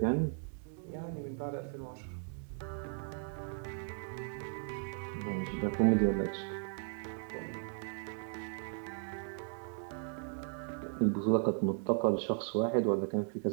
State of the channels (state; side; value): silent; left; 53 dB below the other